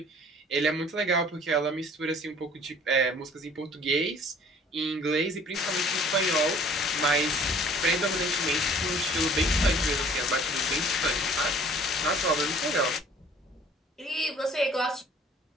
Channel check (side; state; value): both; normal; correlation 0.53